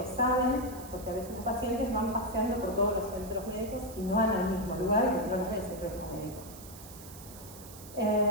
saben, porque a veces los pacientes van paseando por todos los centros médicos y no van al mismo lugar y no los ve el propio médico.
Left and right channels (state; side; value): noise; right; hiss, 16 dB below the sound